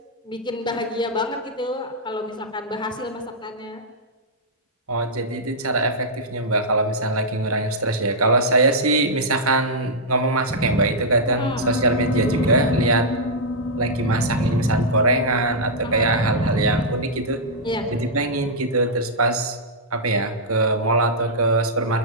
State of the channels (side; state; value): both; normal; correlation -0.08